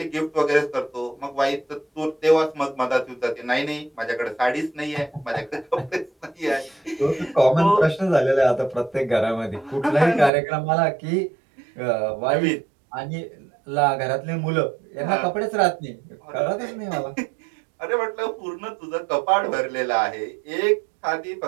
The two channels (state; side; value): drops out; left; at 10.3 s